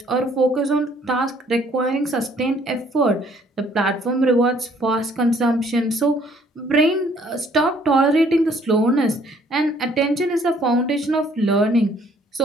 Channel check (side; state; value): both; normal; correlation 0.61